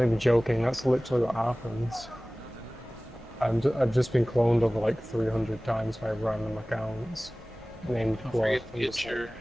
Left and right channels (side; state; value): both; normal; correlation 0.98